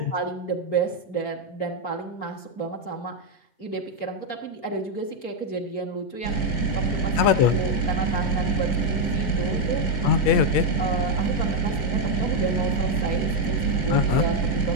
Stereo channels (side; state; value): right; late; 8.7 ms